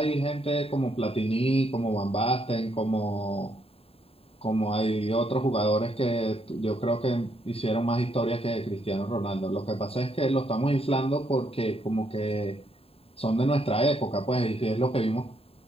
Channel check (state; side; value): late; right; 0.28 ms